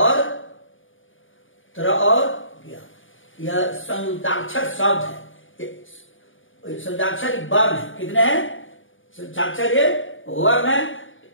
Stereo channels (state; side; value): late; right; 0.57 ms